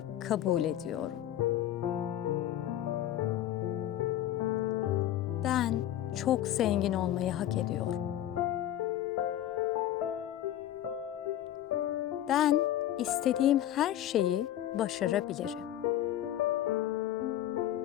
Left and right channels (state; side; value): quieter; right; 12.3 dB